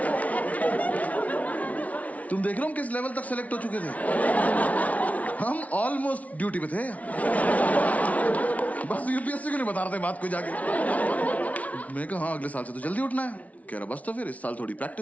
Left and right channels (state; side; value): late; right; 0.069 ms